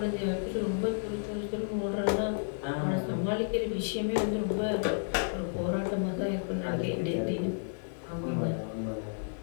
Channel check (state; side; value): silent; right; digital silence